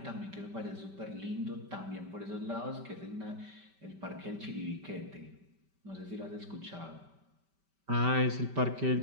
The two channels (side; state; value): left; late; 5.2 ms